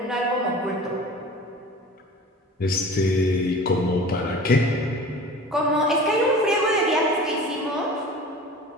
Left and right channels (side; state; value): both; normal; correlation 0.40